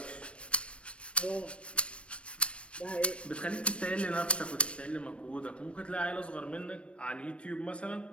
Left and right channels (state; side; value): late; right; 0.060 ms